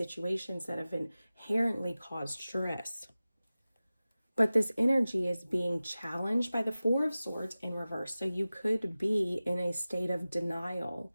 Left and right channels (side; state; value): both; inverted; correlation -0.96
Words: that have inherently caused stress. But this energy is being challenged by the Four of Swords in reverse. So you could be in a state of denial.